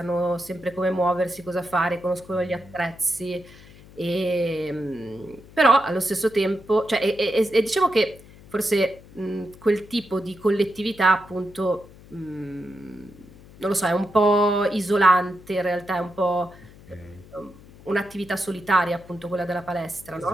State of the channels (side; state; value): left; noise; hum, 22 dB below the sound